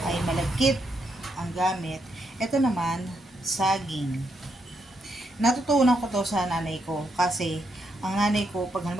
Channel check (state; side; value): normal; both; correlation 0.79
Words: ay malagkit ang gamit. Ito naman, saging. Natutunan ko to sa nanay ko kasi ang nanay ko pag